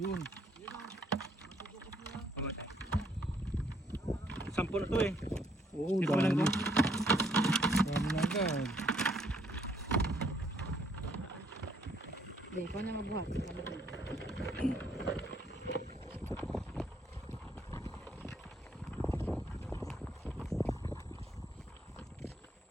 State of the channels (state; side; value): normal; both; correlation 0.67